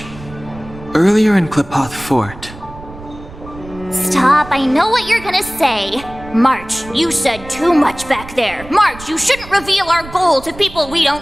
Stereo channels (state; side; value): noise; right; rumble, 16 dB below the sound